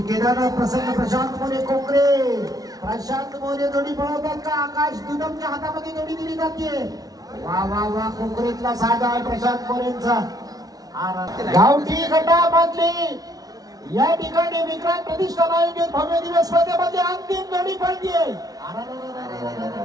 केदारनाथ प्रसन्न प्रशांत मोरे कोकरे. प्रशांत मोरे जोडी पळवतात का? आकाश दुदमच्या हातामध्ये जोडी दिली जाते. वा वा वा. कोकरेतला साधा आहे प्रशांत मोरेंचा. गावठी गटामधली या ठिकाणी विक्रांत प्रतिष्ठान आयोजित भव्य दिवस स्पर्धेमध्ये अंतिम जोडी पडतीये.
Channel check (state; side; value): late; left; 0.18 ms